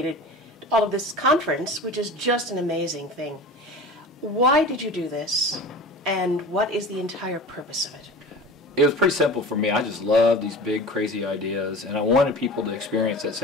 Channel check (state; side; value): normal; both; correlation 0.35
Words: all of this conference, which is just an amazing thing. Why did you do this, and what is the entire purpose of it? It was pretty simple for me. I just love these big, crazy ideas, and I wanted people to experience that